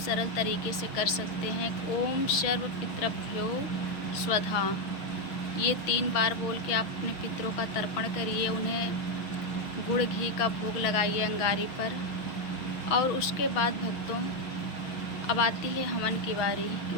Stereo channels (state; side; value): late; right; 6.1 ms